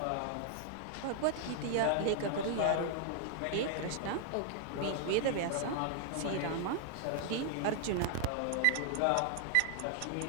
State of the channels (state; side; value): different; both; correlation -0.01